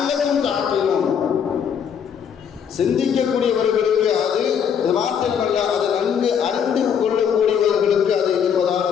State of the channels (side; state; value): right; quieter; 7.7 dB